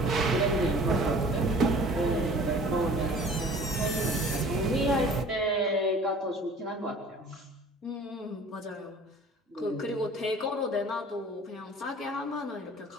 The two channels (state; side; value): normal; both; correlation 0.47